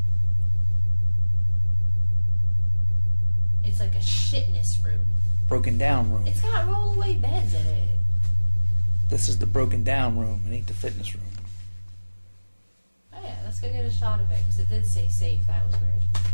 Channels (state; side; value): inverted; both; correlation -1.00